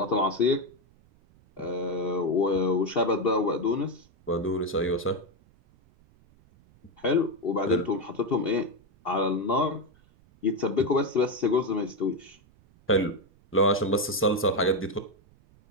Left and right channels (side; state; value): right; noise; rumble, 30 dB below the sound